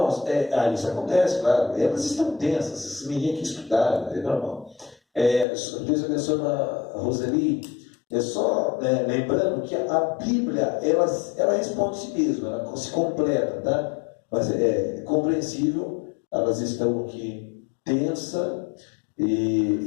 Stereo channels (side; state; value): right; drops out; at 5.5 s